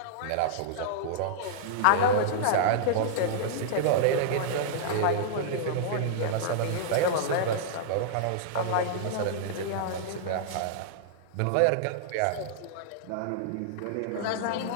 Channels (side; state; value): both; different; correlation -0.02